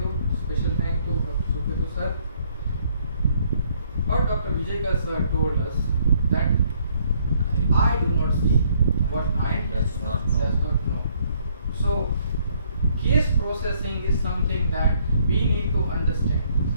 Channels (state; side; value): inverted; both; correlation -0.66